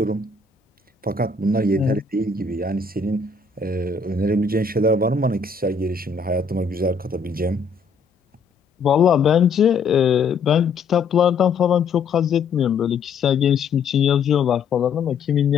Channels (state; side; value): quieter; right; 4.9 dB